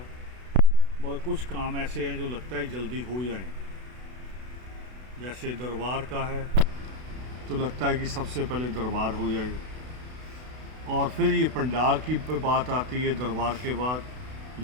मगर कुछ काम ऐसे हैं जो लगता है जल्दी हो जाएं। जैसे दरबार का है तो लगता है कि सबसे पहले दरबार हो जाए, और फिर ये पंडाल की बात आती है दरबार के बाद।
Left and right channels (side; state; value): left; late; 32 ms